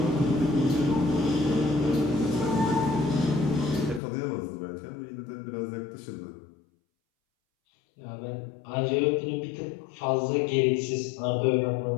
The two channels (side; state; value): right; drops out; at 4.0 s